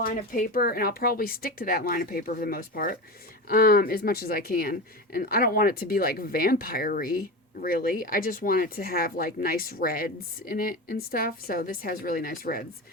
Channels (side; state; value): both; normal; correlation 0.24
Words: of paper, and I'll probably stick to that line of paper for the most part, as much as I can. And I don't want it to be like vampire-y, really. I just want it to have like nice reds in it and stuff. So this has really nice reds.